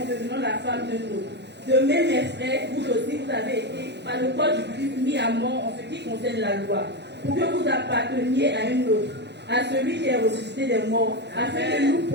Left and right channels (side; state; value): left; late; 0.50 ms